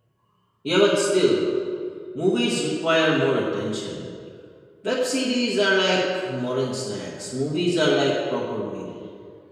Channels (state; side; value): identical; both; correlation 1.00